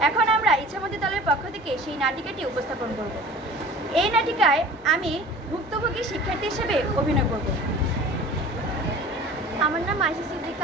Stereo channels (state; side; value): normal; both; correlation 0.42